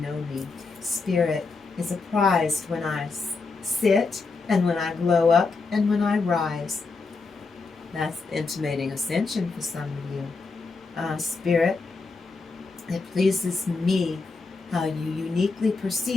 me. Spirit is apprised when I sit, and when I glow up, and when I rise. That's intimating ascension for some of you. Spirit, it pleases me how you uniquely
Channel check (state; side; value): quieter; right; 4.1 dB